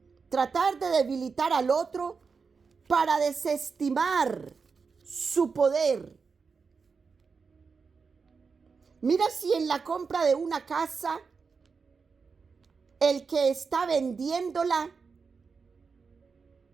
Tratar de debilitar al otro para desestimar su poder. Mira si en la compra de una casa, el que está vendiéndola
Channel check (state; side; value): quieter; left; 5.2 dB